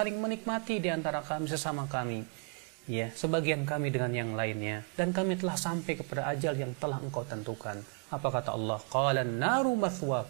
menikmati di antara kami sesama kami. Ya, sebagian kami dengan yang lainnya, dan kami telah sampai kepada ajal yang telah Engkau tentukan. Apa kata Allah? Qalan naru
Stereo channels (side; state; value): left; quieter; 36.9 dB